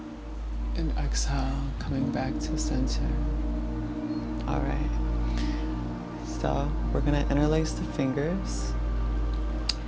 And exhale, coming back to center. All right. So we're gonna interlace the fingers,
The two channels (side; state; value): both; identical; correlation 1.00